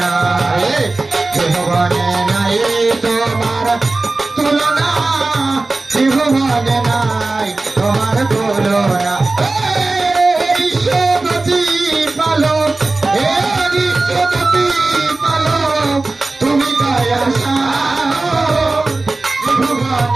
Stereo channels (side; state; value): left; quieter; 3.3 dB